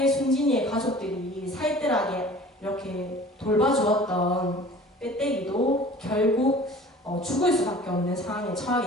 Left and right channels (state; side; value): normal; both; correlation 0.45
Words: 순진이의 가족들이 살뜰하게 이렇게 돌봐주었던 빼떼기도 결국 죽을 수밖에 없는 상황에 처하게